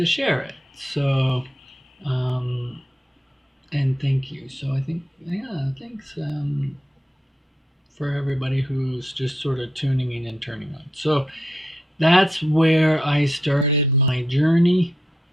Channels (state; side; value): normal; both; correlation 0.82